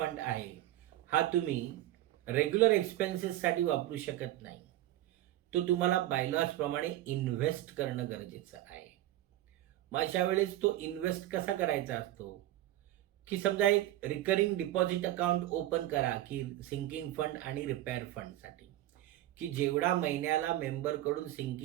आहे हा तुम्ही रेग्युलर एक्सपेन्सेससाठी वापरू शकत नाही. तो तुम्हाला बायलॉजप्रमाणे इन्व्हेस्ट करणं गरजेचं आहे. मग अशा वेळेस तो इन्व्हेस्ट कसा करायचा असतो की समजा एक रिकरिंग डिपॉझिट अकाउंट ओपन करा की सिंकिंग फंड आणि रिपेअर फंडसाठी, की जेवढा महिन्याला मेंबरकडून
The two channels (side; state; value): left; quieter; 14.4 dB